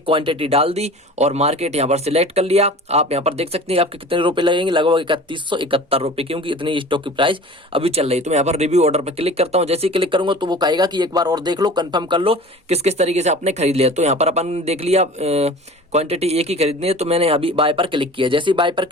क्वांटिटी डाल दी और मार्केट यहाँ पर सिलेक्ट कर लिया। आप यहाँ पर देख सकते हैं आपके कितने रुपए लगेंगे, लगभग 3171 रुपए, क्योंकि इतनी स्टॉक की प्राइस अभी चल रही है। तो मैं यहाँ पर रिव्यू ऑर्डर पर क्लिक करता हूँ। जैसे ही क्लिक करूंगा तो वो कहेगा कि एक बार और देख लो, कंफर्म कर लो किस किस तरीके से आपने खरीद लिया। तो यहाँ पर अपन देख लिया क्वांटिटी एक ही खरीदनी है, तो मैंने अभी बाय पर क्लिक किया। जैसे ही बाय पर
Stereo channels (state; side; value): normal; both; correlation 0.40